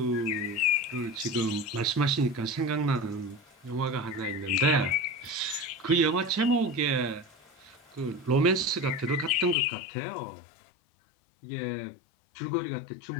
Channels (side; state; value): right; drops out; at 9.6 s